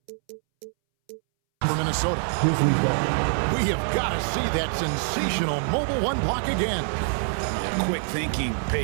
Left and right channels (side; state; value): left; silent; 62 dB below the other